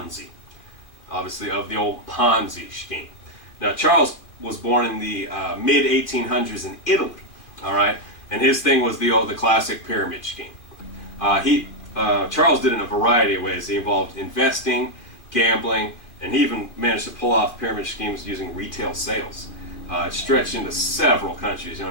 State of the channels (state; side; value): late; right; 2.4 ms